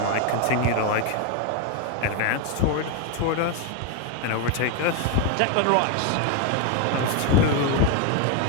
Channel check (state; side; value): different; both; correlation 0.01